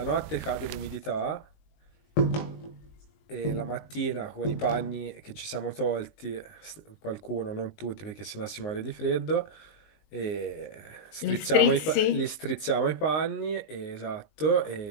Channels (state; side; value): late; right; 19 ms